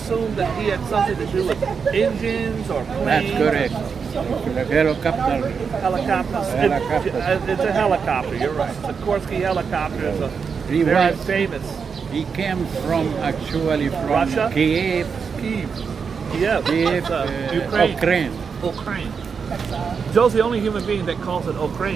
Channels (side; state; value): left; quieter; 5.9 dB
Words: that he had something to do with engines or planes. That's correct. The helicopter. Helicopters. Helicopter. It's a helicopter, you're right. Sikorsky helicopter is a He very was- famous. He came from actually from Russia? Kiev. Kiev. Yes, Beef, it's, Ukraine. Ukraine. Ukraine. Joe's the only human being that calls it